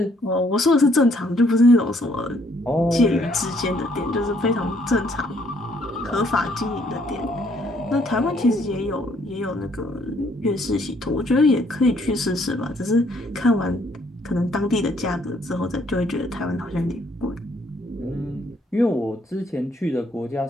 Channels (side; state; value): both; normal; correlation 0.67